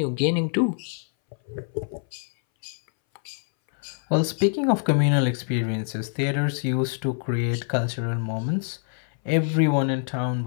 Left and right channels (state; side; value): silent; right; 60 dB below the other